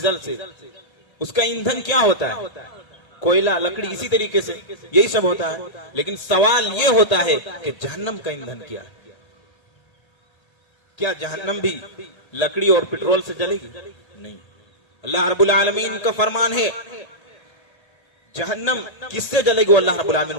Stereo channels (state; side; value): late; right; 1.8 ms